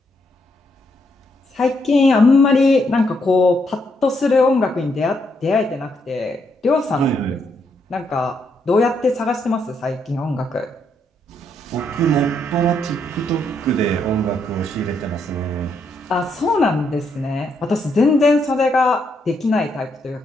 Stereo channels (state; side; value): normal; both; correlation 0.76